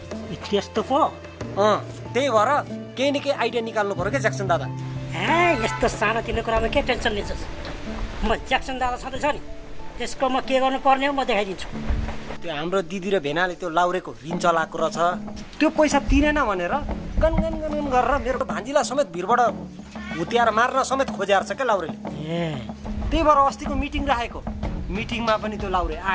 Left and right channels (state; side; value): identical; both; correlation 1.00